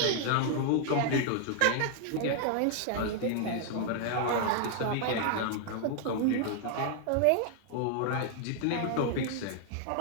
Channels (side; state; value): both; different; correlation 0.00